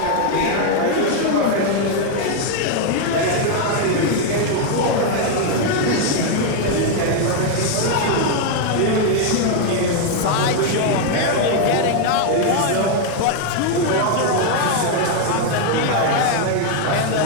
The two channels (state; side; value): different; both; correlation 0.00